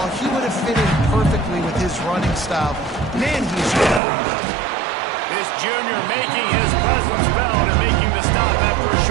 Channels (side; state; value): left; drops out; at 4.0 s